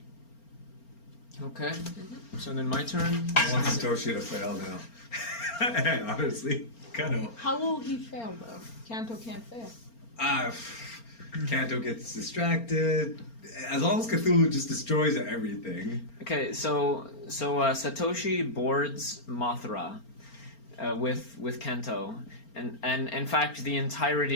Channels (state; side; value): late; right; 4.4 ms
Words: Okay. So then my turn. I want Satoshi to fail now. Honestly, kind of. How will he fail though? Kanto can't fail. Kanto gets distracted. As long as Cthulhu just destroys everything. Okay, so Satoshi boards Mothra with Kanto, and in fact the